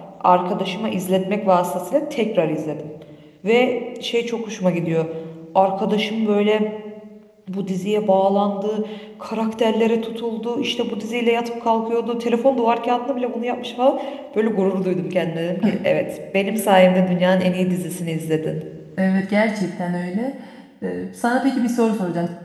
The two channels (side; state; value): both; identical; correlation 1.00